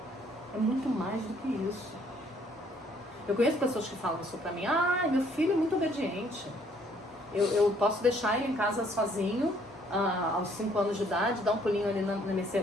É muito mais do que isso. Eu conheço pessoas que falam isso pra mim: meu filho é muito obediente. Eu posso deixar ele em casa sozinho aos 5 anos de idade, dar um pulinho ali na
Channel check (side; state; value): both; normal; correlation 0.63